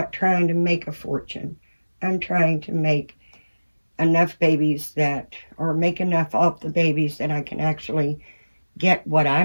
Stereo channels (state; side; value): inverted; both; correlation -1.00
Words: trying to make a fortune. I'm trying to make enough babies or make enough off the babies that I can actually get what